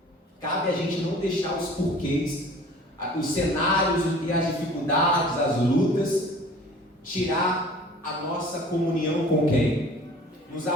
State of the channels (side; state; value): both; normal; correlation 0.47